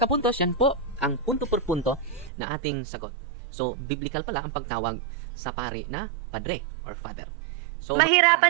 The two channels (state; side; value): drops out; left; at 2.3 s